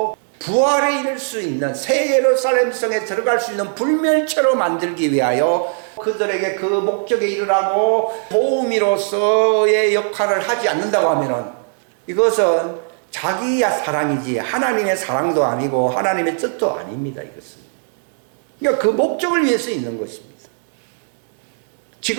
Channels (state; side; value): silent; left; 65 dB below the other